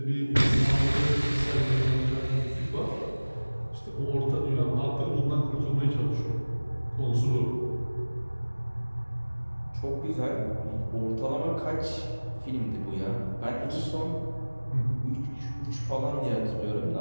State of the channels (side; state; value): both; inverted; correlation -1.00